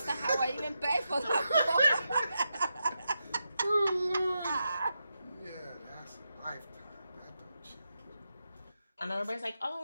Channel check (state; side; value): inverted; both; correlation -0.87